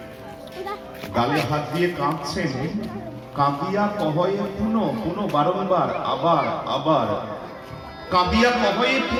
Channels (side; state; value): both; identical; correlation 1.00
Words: গালে হাত দিয়ে কাঁদছেন, কাঁদিয়া কহয়ে পুনঃ, পুনঃ বারংবার, আবার আবার কাঁদিয়া কহয়ে